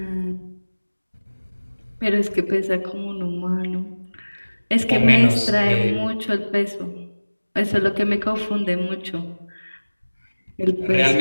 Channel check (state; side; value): inverted; both; correlation -1.00